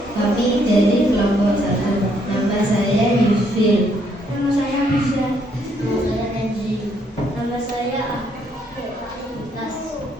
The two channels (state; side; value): normal; both; correlation 0.70